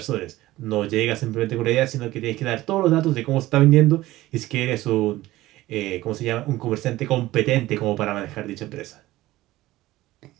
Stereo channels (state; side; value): quieter; left; 16.9 dB